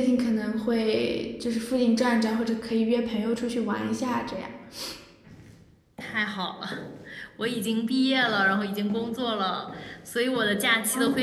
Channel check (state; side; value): identical; both; correlation 1.00